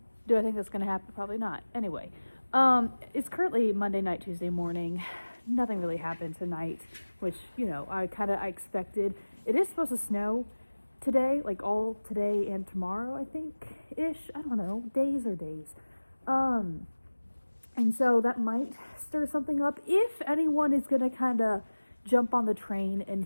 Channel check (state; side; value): inverted; both; correlation -1.00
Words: Do I think that's going to happen? Probably not. Anyway, it's currently Monday night, Tuesday morning. Nothing really happened tonight, which, I expected. It is supposed to snow today, like all today and tomorrow, I think, ish. I don't know, days or days. And so that might stir something up if anyone is going to kind of jump on the train and